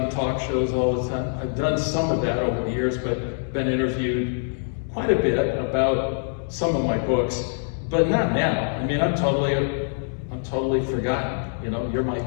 talk shows all the time. I've done some of that over the years, but been interviewed quite a bit about some of my books, but not now. I mean, I'm totally forgotten. You know,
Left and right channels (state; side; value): silent; right; digital silence